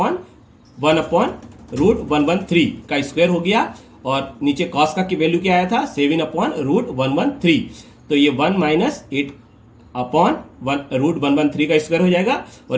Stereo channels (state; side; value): identical; both; correlation 1.00